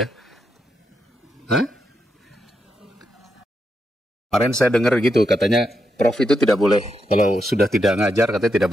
Hah? Kemarin saya dengar gitu katanya prof itu tidak boleh, kalau sudah tidak ngajar katanya tidak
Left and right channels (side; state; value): both; normal; correlation 0.84